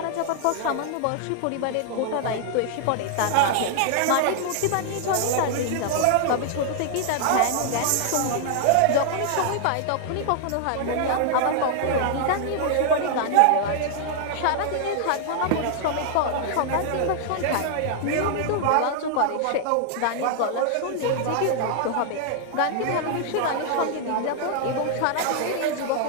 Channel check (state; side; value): different; both; correlation 0.00